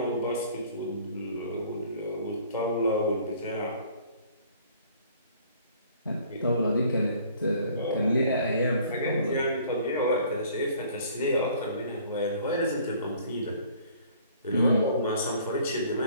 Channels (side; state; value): both; inverted; correlation -0.55